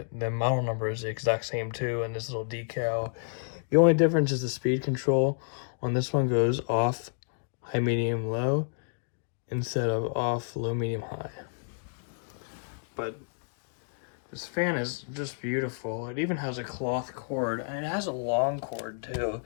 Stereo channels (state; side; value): silent; right; digital silence